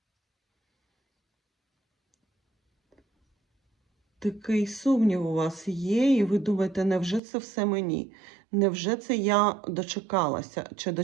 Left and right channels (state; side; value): drops out; left; at 7.2 s